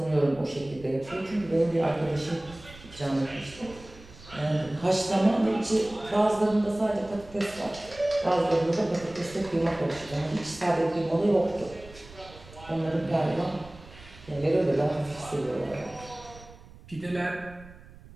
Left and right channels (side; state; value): right; noise; rumble, 20 dB below the sound